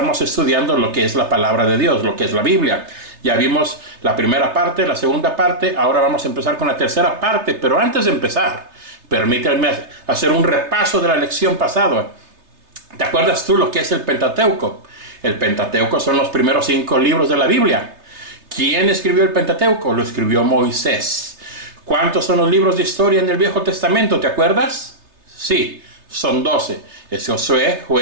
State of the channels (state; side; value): late; left; 3.3 ms